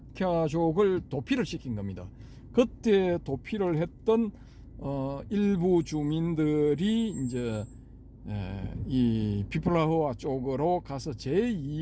도피를 시킨 겁니다. 그때 도피를 했던 일부 주민들이 이제 이 피플라흐아 쪽으로 가서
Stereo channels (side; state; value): both; identical; correlation 1.00